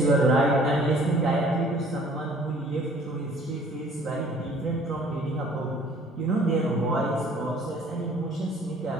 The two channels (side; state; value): both; normal; correlation 0.54